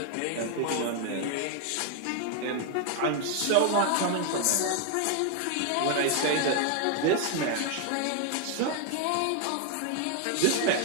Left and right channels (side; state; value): both; different; correlation 0.00